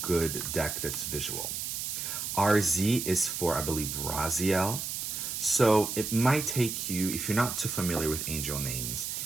deck that's visual. RZ is for, I believe, Raziel. So it might take you, if you're not too familiar with angel names,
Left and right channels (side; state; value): right; noise; hiss, 4 dB below the sound